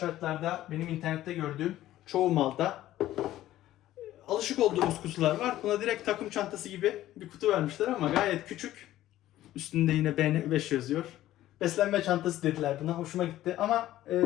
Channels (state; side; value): quieter; right; 14.2 dB